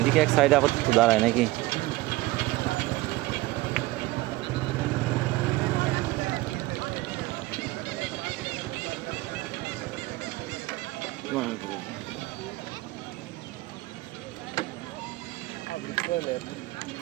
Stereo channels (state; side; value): quieter; left; 19.5 dB